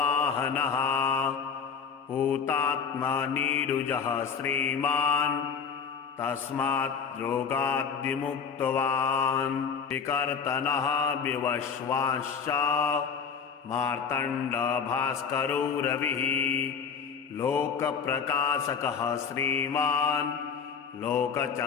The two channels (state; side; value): quieter; right; 6.3 dB